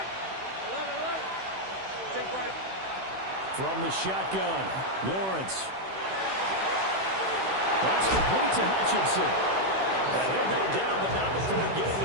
From the shotgun, Lawrence. That's complete to Hutchinson. And he'll go down, but not before getting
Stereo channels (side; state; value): left; late; 16 ms